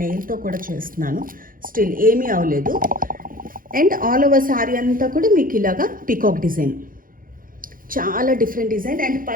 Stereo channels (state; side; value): late; left; 0.40 ms